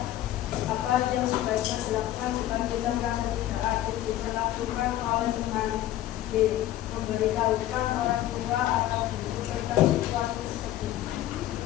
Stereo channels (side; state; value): right; quieter; 13.8 dB